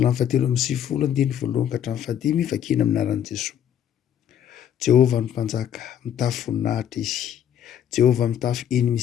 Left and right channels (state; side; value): quieter; right; 9.8 dB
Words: fahatelo amby 9 andiny voalohany ka hatramin'ny fahadimy vakina amin'ny anaran'i Jesosy. Jehovah ny mpanjaka mitafy voninahitra izy. Jehovah mitafy eny